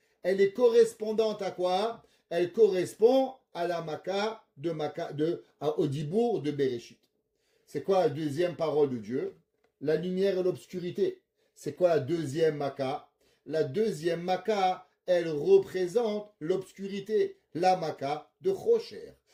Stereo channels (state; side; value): identical; both; correlation 1.00